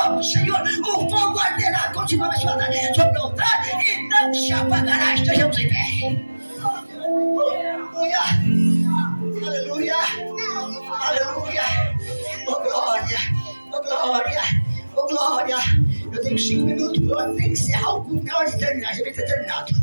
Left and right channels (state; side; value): inverted; both; correlation -1.00